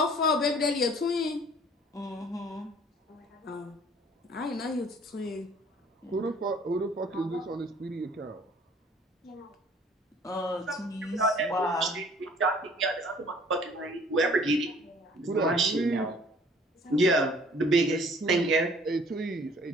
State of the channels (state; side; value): normal; both; correlation 0.54